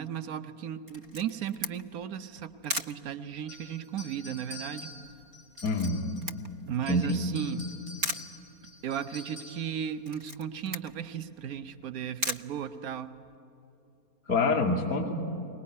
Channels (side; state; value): left; late; 4.3 ms